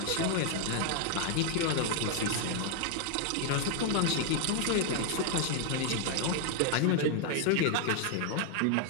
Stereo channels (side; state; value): both; different; correlation 0.01